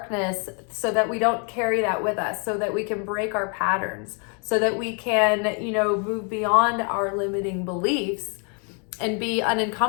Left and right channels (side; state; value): right; quieter; 37.5 dB